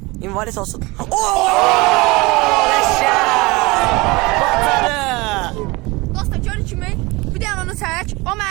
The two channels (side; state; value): left; quieter; 23.7 dB